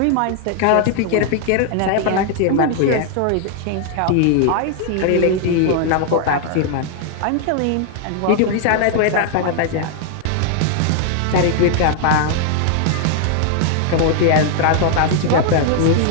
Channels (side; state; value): both; different; correlation 0.00